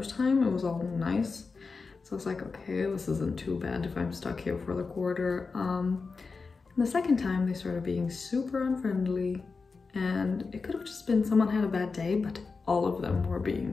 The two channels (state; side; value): quieter; right; 4.5 dB